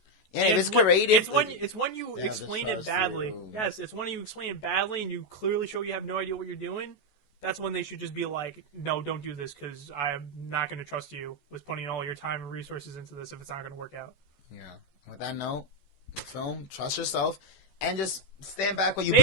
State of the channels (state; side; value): late; right; 14 ms